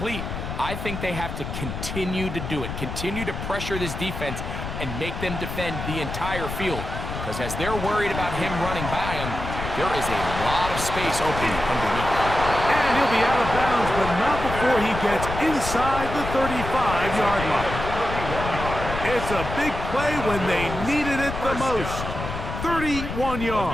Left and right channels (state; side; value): noise; left; rumble, 6 dB below the sound